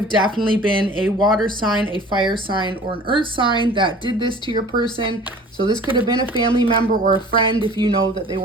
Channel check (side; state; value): both; normal; correlation 0.45